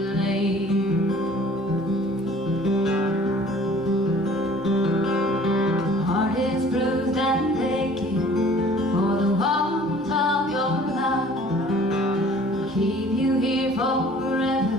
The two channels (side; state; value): both; normal; correlation 0.51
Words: Heart is bruised and aching for the warmth of your love. Keep you here